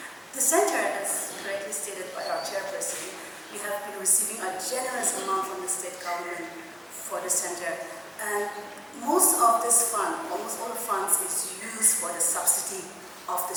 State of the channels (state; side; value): identical; both; correlation 1.00